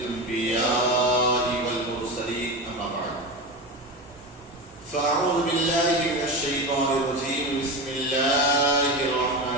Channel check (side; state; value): both; normal; correlation 0.22